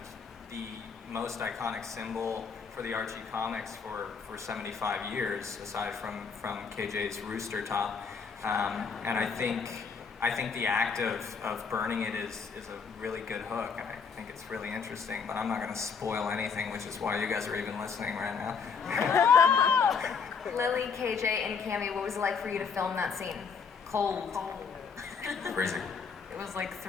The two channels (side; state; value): right; quieter; 5.8 dB